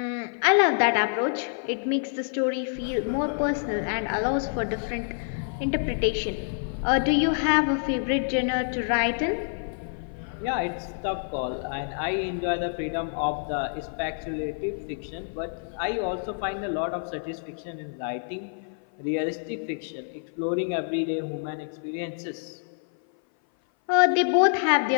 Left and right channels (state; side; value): silent; right; 56 dB below the other